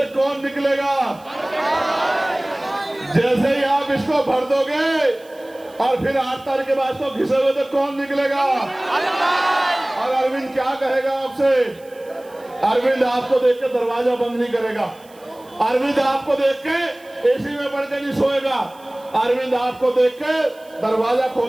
कौन निकलेगा? जैसे ही आप इसको भर दोगे और फिर 8 तारीख के बाद तो घिसे हुए तो कौन निकलेगा? और अरविंद क्या कहेगा आपसे? अरविंद आपको देख के दरवाजा बंद नहीं करेगा। अरविंद आपको देख के एसी में पड़ के नहीं सोएगा। अरविंद आपको देख के दरवाजा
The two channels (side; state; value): right; noise; hiss, 27 dB below the sound